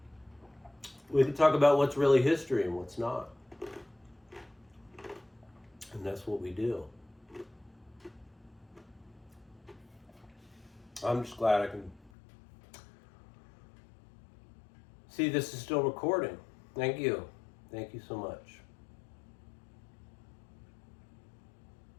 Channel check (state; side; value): drops out; right; at 12.1 s